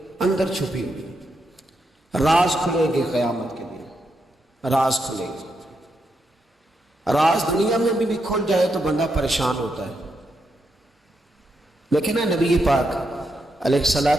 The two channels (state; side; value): normal; both; correlation 0.82